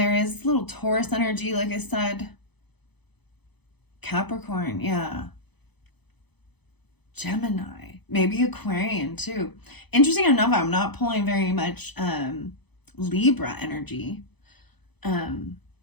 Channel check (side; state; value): right; late; 0.98 ms